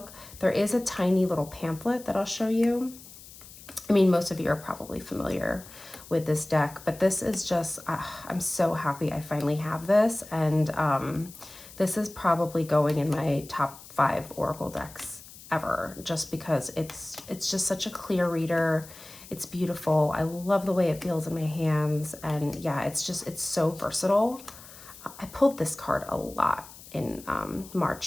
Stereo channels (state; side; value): noise; left; hiss, 18 dB below the sound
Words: There is a tiny little pamphlet that I'll show you. I mean, most of you are probably familiar with this deck, but this is just, I'm so happy I finally have this. And this is probably going in my top 5 Oracle decks ever, just because it's just such a clear reader. It's beautiful. I love the way it feels in my hands. And yeah, it's so versatile. I pulled this card a lot in